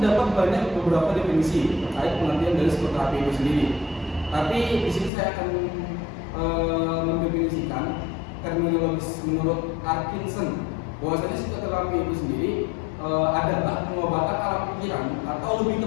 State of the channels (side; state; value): right; drops out; at 5.1 s